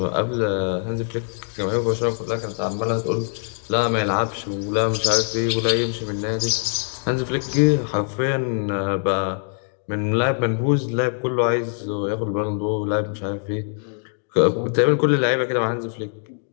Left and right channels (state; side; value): silent; right; digital silence